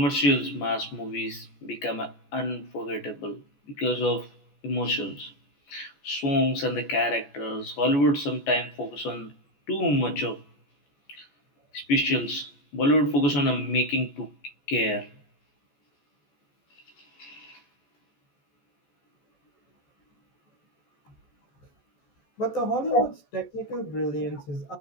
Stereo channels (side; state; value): right; late; 14 ms